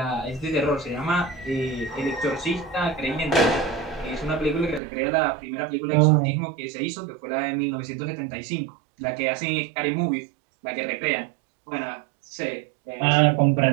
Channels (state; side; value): drops out; left; at 4.8 s